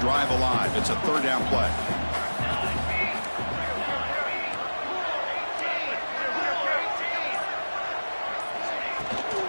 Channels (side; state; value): both; inverted; correlation -1.00